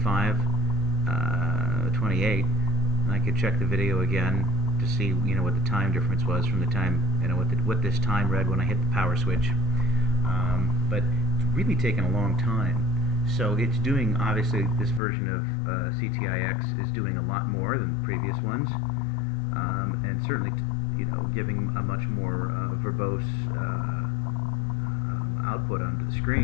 And I could check the video again to see, you know, what the time difference was from the time, you know, what this time read when I hit the power switch. But it's really taken a long time. So it's doing, obviously, this version of CTIX is doing a lot more than the previous ones, and certainly, you know, giving a much more verbose output onto the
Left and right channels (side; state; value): right; drops out; at 15.0 s